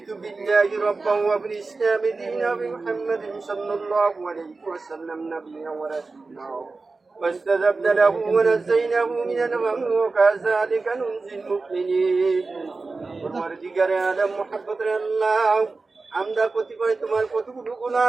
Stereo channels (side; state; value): left; quieter; 3.8 dB